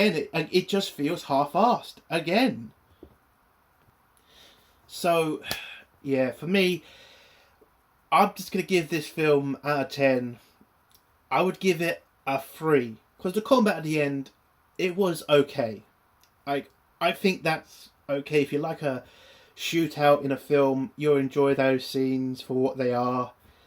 it just feels half-assed again. So, yeah, for me, I'm just going to give this film out of 10. I would give it a 3. Because the combat at the end, it was okay. I think that's okay. If you like a shootout in a film, you'll enjoy those scenes for what they are.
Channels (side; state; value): both; identical; correlation 1.00